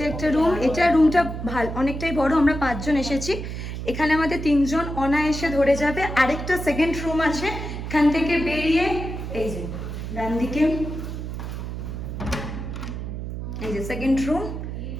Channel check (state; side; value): noise; right; hum, 6 dB below the sound